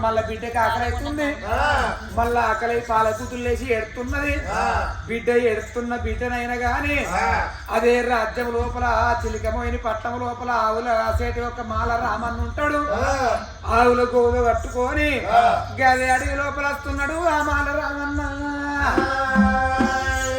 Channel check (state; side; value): identical; both; correlation 1.00